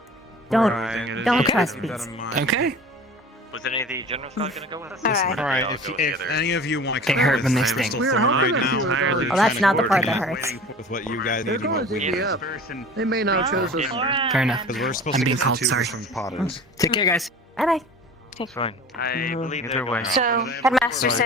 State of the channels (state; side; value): normal; both; correlation 0.40